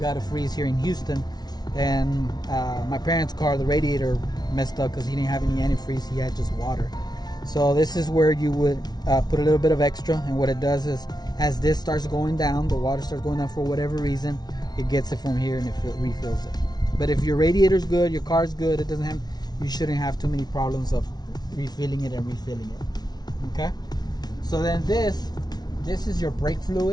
a freeze here in Houston, and my parents' car, the radiator messed up because he didn't have any antifreeze. He had just water. So this is where you would put a little bit of extra, and what it does is, as this starts going down, the water starts going down for whatever reason, it gets it from here and it refills it. But if your radiator's good, your car's good, you shouldn't have too many problems of refilling it and refilling it. Okay, so then this is your brake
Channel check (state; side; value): late; right; 0.19 ms